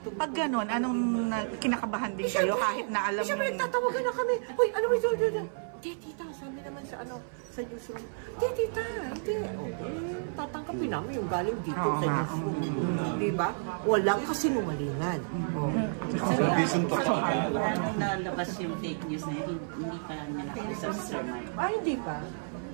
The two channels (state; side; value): silent; left; 57 dB below the other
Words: tubo. Pag ganun, anong kinakabahan din kayo kahit na alam mo? Siyempre, nagtatawagan na kami. Uy, ano ba ito? Tita, sabi naman sa sa newsroom. Tita, hindi. Tatangkapin namin yung galing dito sa newsroom. Diba? Walang kasinungalingan. Nung nalabas yung fake news na yun, hindi pa namin nakausap si Sir Mike. Hindi pa.